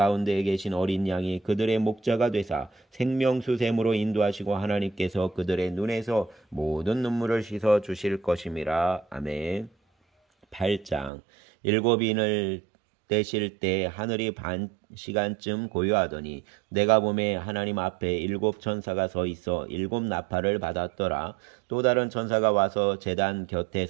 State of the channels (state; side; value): drops out; left; at 11.1 s